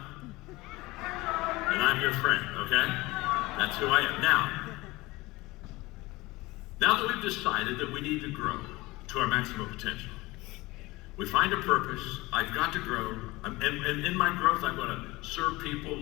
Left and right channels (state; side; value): quieter; right; 21.0 dB